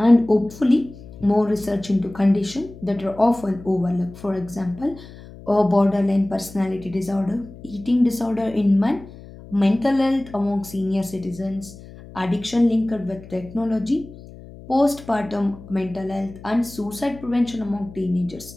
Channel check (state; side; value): noise; left; hum, 18 dB below the sound